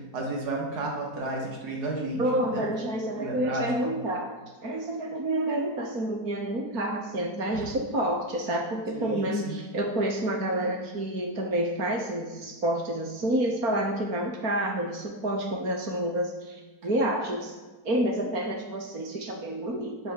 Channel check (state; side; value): late; left; 4.4 ms